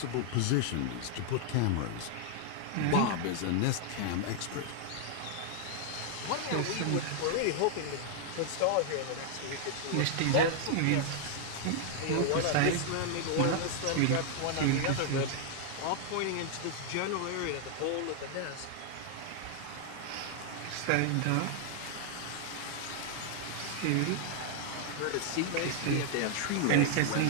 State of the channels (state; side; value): different; both; correlation 0.00